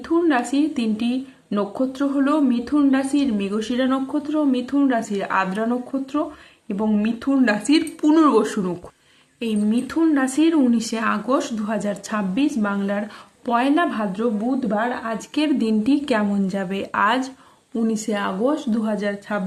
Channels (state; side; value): identical; both; correlation 1.00